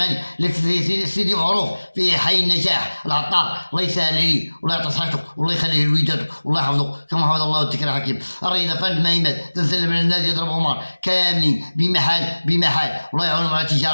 اللي سيدي معروف في حي النجاح العطار، الله يسهل عليه والله يعطي صحته والله يخليه لوليداته والله يحفظه كما حفظ الله الذكرى الحكيم. الرياضة فن نائمات تنسلم على الناس يضرب عمر كاملين بمحال والله يعاونهم على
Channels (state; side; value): inverted; both; correlation -1.00